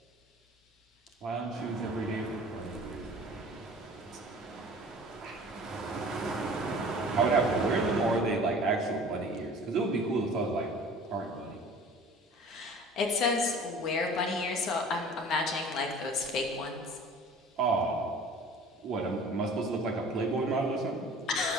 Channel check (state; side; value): normal; both; correlation 0.46